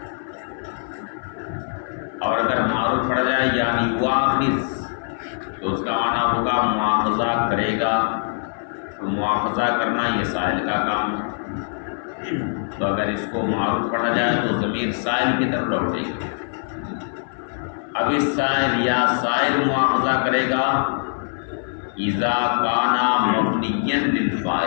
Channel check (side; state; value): right; silent; 64 dB below the other